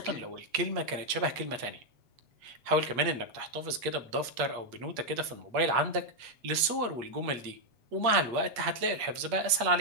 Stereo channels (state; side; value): late; left; 8.4 ms